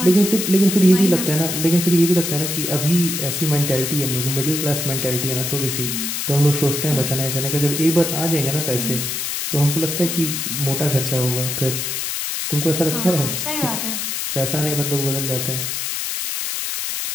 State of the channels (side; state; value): left; noise; hiss, 2 dB below the sound